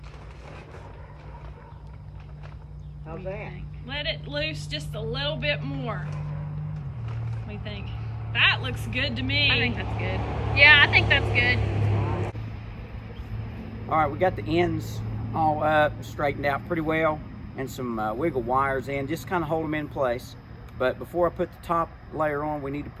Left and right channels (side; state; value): both; identical; correlation 1.00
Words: How's that? Let it loose just a little bit more. What do you think? That looks good to me. I think that's good. Yeah, I think that's good. All right, we got the ends all up, straightened out pretty well, and some wiggle wires in, just kind of hold them in place. But before I put the top layer on, we need to